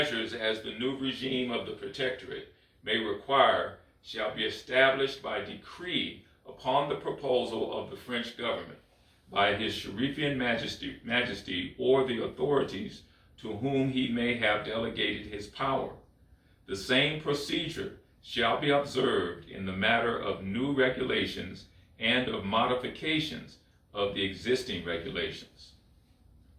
as the new regime of the Protectorate may require shall be established by decree upon the proposal of the French government by his Sherifian Majesty or the authorities to whom he may have delegated his power. The same procedure shall be observed in the matter of new regulations and of modifications of the existing regulations.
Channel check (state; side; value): identical; both; correlation 1.00